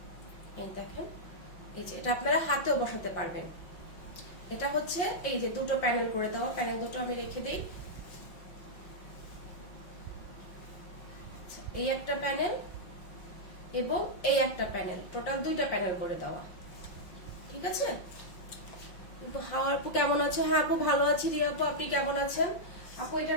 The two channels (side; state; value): right; late; 5.6 ms